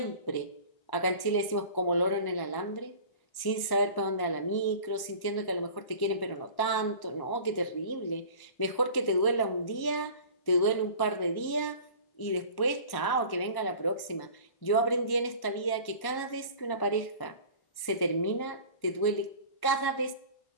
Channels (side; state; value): right; late; 1.1 ms